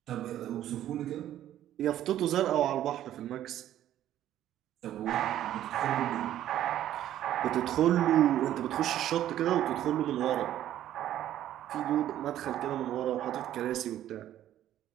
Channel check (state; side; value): quieter; left; 12.1 dB